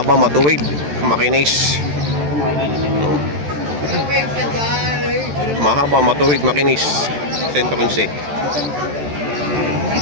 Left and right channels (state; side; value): late; left; 14 ms